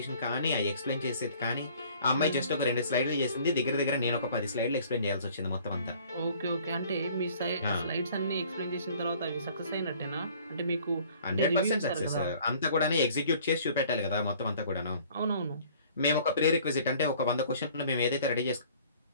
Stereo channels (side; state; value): both; inverted; correlation -0.54